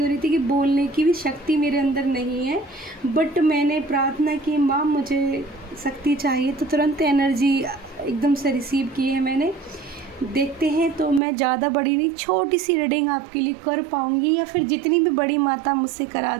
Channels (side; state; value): left; drops out; at 11.2 s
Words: रही थी कि बोलने की भी शक्ति मेरे अंदर नहीं है। बट मैंने प्रार्थना की, माँ मुझे शक्ति चाहिए, तो तुरंत एनर्जी एकदम से रिसीव की है मैंने। देखते हैं तो मैं ज़्यादा बड़ी नहीं, छोटी सी रीडिंग आपके लिए कर पाऊँगी या फिर जितनी भी बड़ी माता मुझसे